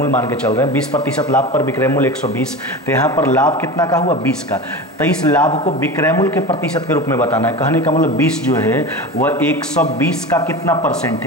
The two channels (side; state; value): both; normal; correlation 0.29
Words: मान के चल रहे हैं, 20% लाभ पर विक्रय मूल्य 120, तो यहाँ पर लाभ कितना का हुआ 20 का। तो इस लाभ को विक्रय मूल्य के प्रतिशत के रूप में बताना है। कहने का मतलब 20 जो है वह 120 का कितना परसेंट